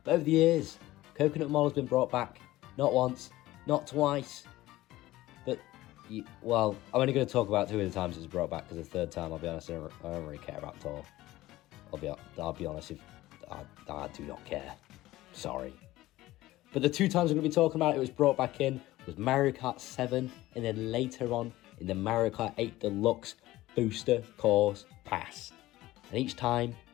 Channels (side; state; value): right; quieter; 16.9 dB